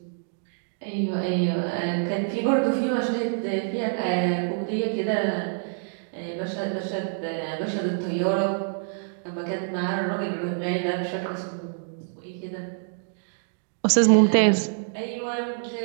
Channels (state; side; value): silent; left; digital silence